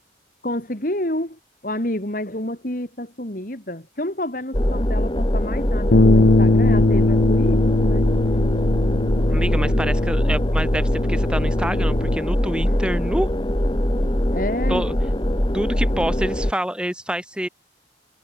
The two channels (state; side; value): normal; both; correlation 0.80